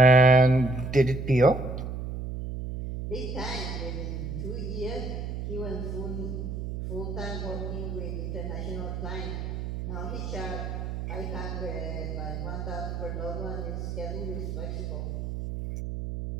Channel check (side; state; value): right; noise; hum, 5 dB below the sound